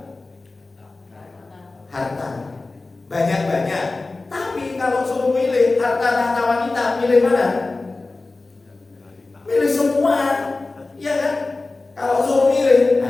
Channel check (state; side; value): quieter; right; 3.4 dB